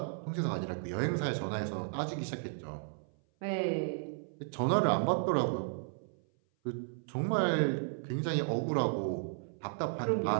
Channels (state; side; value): silent; left; 55 dB below the other